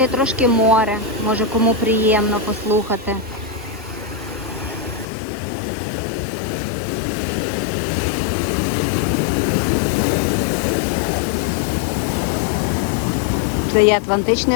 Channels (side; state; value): right; drops out; at 5.1 s